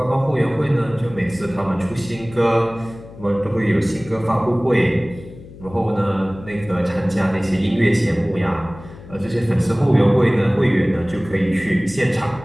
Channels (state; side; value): noise; left; hum, 18 dB below the sound